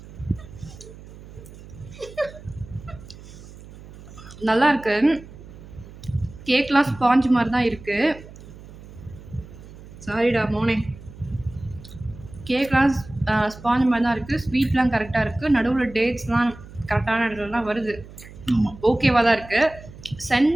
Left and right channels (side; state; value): right; noise; hum, 18 dB below the sound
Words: நல்லா இருக்கு. கேக்லாம் ஸ்பாஞ்ச் மாதிரி தான் இருக்குது. சாரிடா மோனே. கேக்லாம் ஸ்பாஞ்ச் மாதிரி தான் இருக்குது. ஸ்வீட்லாம் கரெக்டாக இருக்குது. நடுவில் டேட்ஸ்லாம் கரெக்டான இடத்துலலாம் வருது. ஓகேவாக தான் இருக்குது.